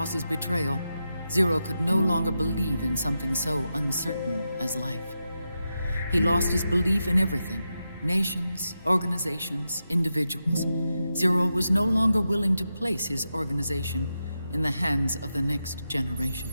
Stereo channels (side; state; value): both; inverted; correlation -0.88